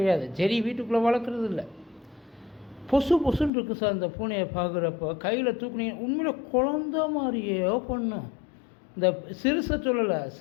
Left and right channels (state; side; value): drops out; right; at 3.5 s